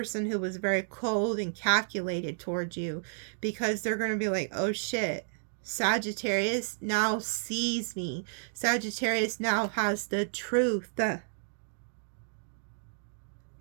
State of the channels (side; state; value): left; silent; digital silence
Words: who was very cold and calculated towards you, because they're going to be like, oh shit, Sagittarius now sees me. Sagittarius now has the truth.